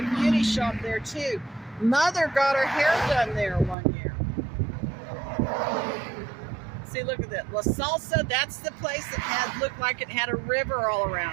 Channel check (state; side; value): drops out; left; at 3.8 s